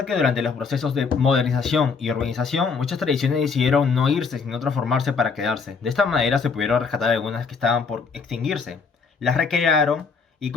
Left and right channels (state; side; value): quieter; right; 5.3 dB